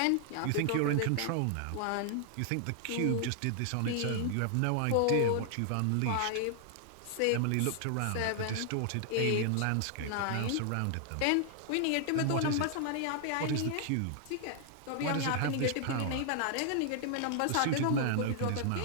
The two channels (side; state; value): both; different; correlation 0.00